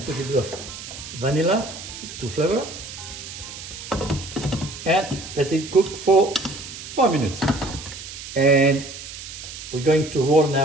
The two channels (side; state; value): right; noise; hiss, 11 dB below the sound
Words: put a bit of vanilla to flavor and let it cook for 4 minutes. And we're going to roll